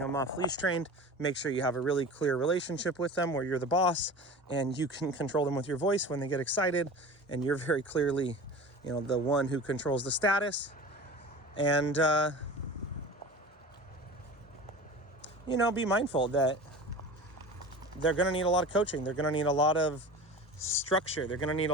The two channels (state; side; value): normal; both; correlation 0.35